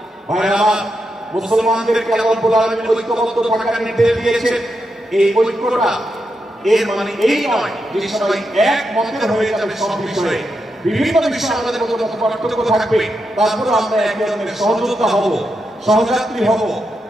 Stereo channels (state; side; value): normal; both; correlation 0.85